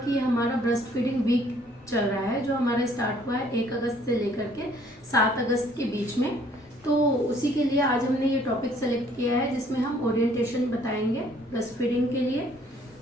ये हमारा ब्रेस्ट फीडिंग वीक चल रहा है, जो हमारा स्टार्ट हुआ है 1 अगस्त से लेकर के 7 अगस्त के बीच में। तो उसी के लिए आज हमने ये टॉपिक सेलेक्ट किया है जिसमें हम ओरिएंटेशन बताएंगे ब्रेस्ट फीडिंग के लिए।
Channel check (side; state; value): both; normal; correlation 0.61